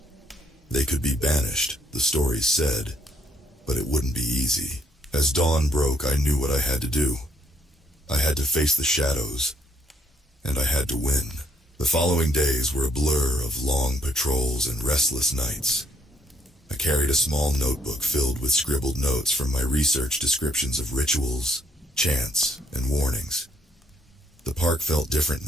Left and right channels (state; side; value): normal; both; correlation 0.70